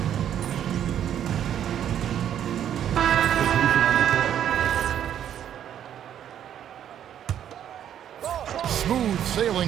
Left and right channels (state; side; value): quieter; left; 10.0 dB